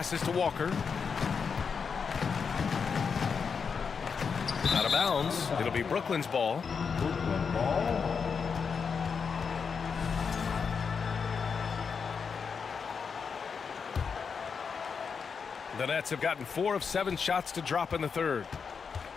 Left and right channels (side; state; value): right; quieter; 5.9 dB